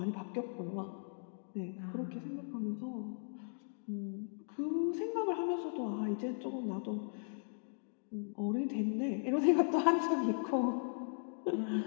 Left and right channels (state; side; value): silent; right; digital silence